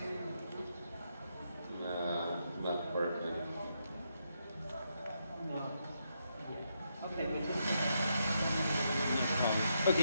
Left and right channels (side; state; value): both; inverted; correlation -0.80